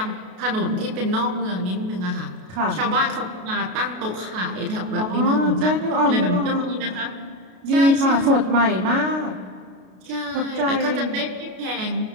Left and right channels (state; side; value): late; left; 33 ms